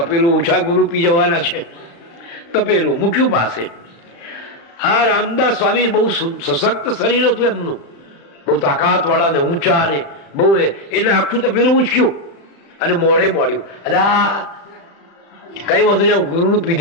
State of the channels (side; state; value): right; late; 35 ms